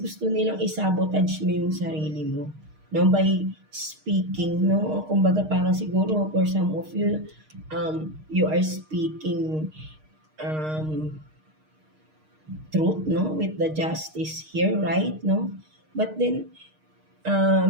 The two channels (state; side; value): late; left; 6.5 ms